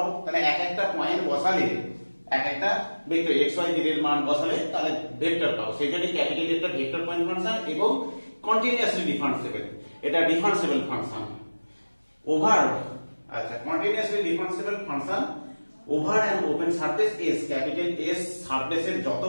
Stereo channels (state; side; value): inverted; both; correlation -1.00